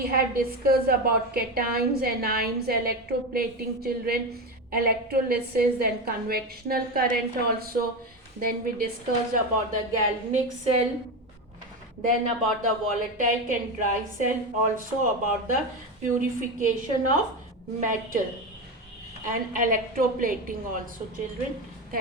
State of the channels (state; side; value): normal; both; correlation 0.18